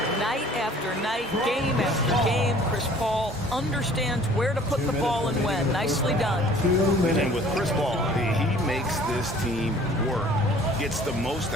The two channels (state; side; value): normal; both; correlation 0.51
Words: Night after night, game after game, Chris Paul understands where to put the ball and when. Nicely done. And with Chris Paul, he makes this team work. gets the most